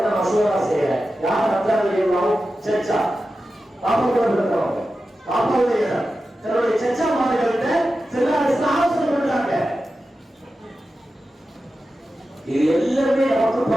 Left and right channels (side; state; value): both; normal; correlation 0.92